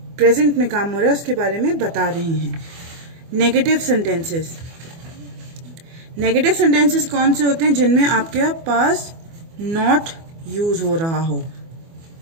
में काम हो रहा है उसके बारे में बता रहे हैं. Negative sentences. नेगेटिव सेंटेंसेस कौन से होते हैं? जिनमें आपके पास नॉट यूज हो रहा हो.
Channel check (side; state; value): left; late; 24 ms